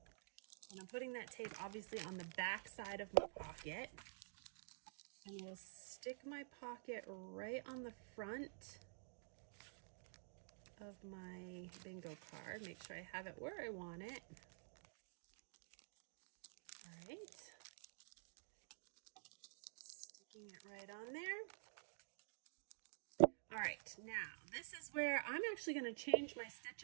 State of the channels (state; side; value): silent; left; digital silence